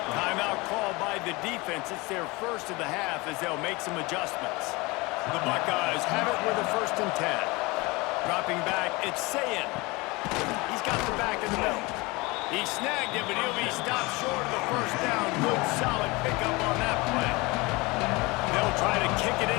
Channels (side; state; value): right; quieter; 24.2 dB